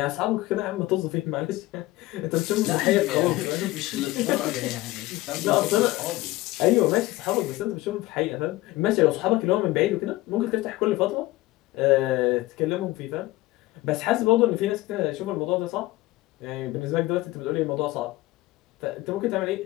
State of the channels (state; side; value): quieter; right; 18.6 dB